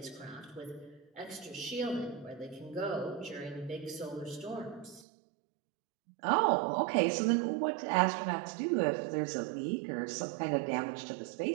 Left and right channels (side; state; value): left; drops out; at 5.1 s